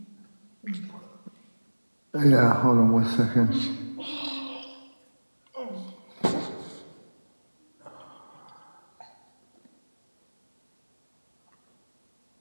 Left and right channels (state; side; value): inverted; both; correlation -1.00